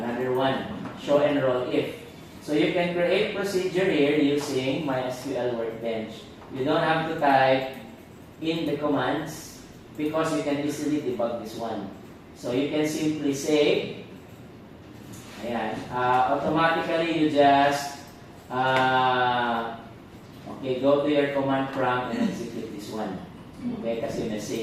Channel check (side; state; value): both; identical; correlation 1.00